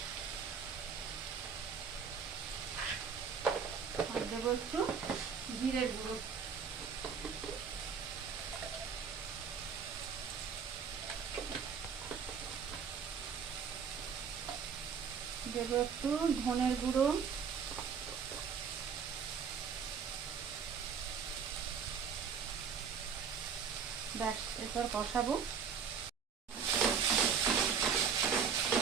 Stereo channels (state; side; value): quieter; left; 6.6 dB